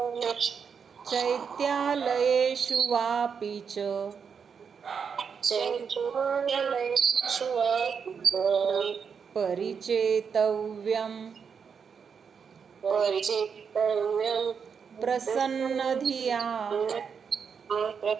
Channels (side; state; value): left; quieter; 6.4 dB